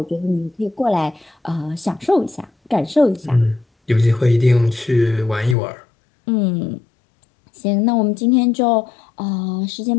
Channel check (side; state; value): right; drops out; at 5.6 s